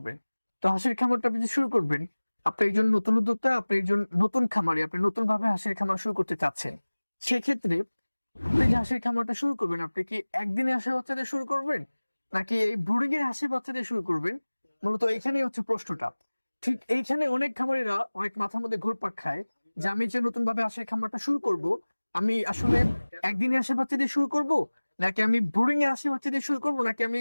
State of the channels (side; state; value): both; inverted; correlation -1.00